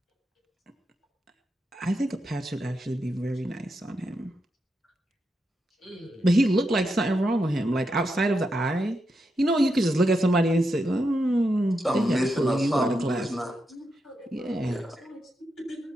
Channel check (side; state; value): both; normal; correlation 0.85